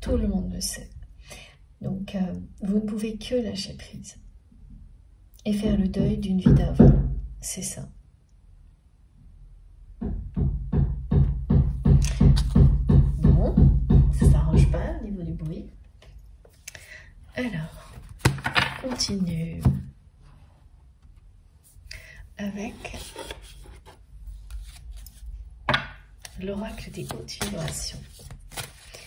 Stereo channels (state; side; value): identical; both; correlation 1.00